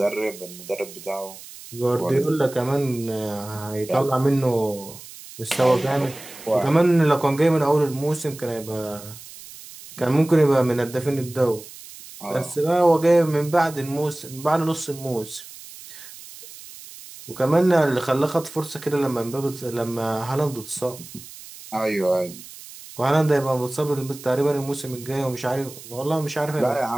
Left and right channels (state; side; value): noise; right; hiss, 16 dB below the sound